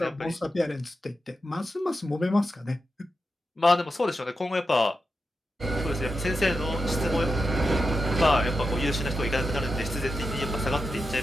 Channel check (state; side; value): normal; both; correlation 0.88